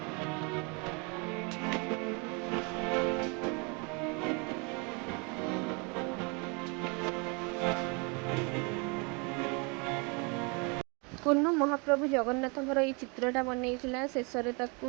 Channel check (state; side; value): quieter; left; 32.1 dB